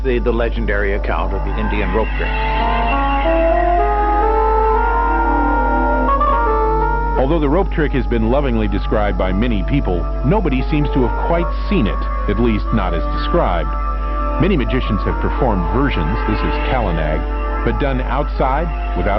the legendary account of the Indian rope trick. Although the rope trick has been lovingly described by many people, nobody seems to have quite seen it, at least not as described. Many magicians have performed versions, this is Kalanag, but done outside,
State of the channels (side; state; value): both; identical; correlation 1.00